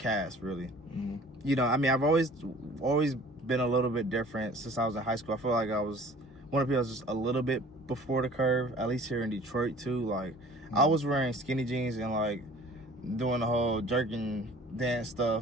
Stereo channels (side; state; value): both; normal; correlation 0.48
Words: really. I mean, I've always been a little bit different since I was in high school. I feel like I was one of the people that was just a little bit before the curve, at least here in Detroit too. Like I was wearing skinny jeans and like doing the whole jerking dance